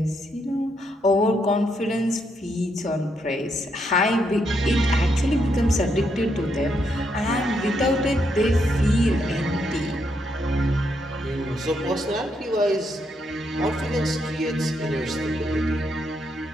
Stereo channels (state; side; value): normal; both; correlation 0.78